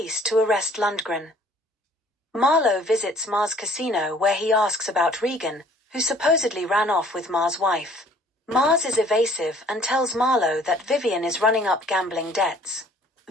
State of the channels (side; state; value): both; normal; correlation 0.55